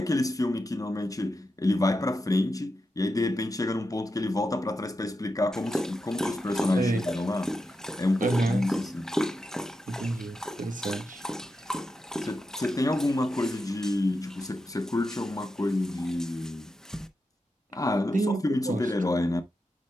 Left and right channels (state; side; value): normal; both; correlation 0.88